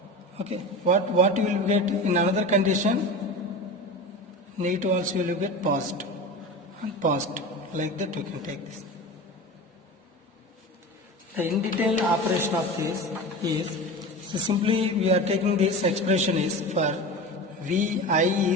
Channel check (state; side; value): normal; both; correlation 0.30